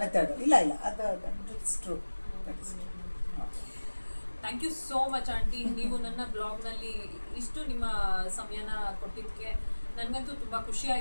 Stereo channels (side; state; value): both; inverted; correlation -1.00